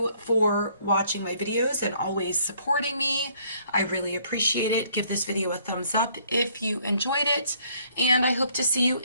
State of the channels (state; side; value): inverted; both; correlation -0.63